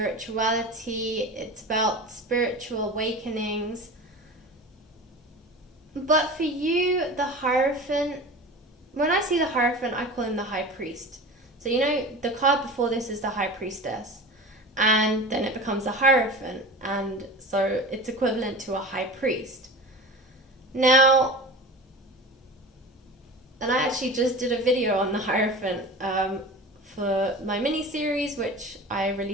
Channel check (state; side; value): normal; both; correlation 0.33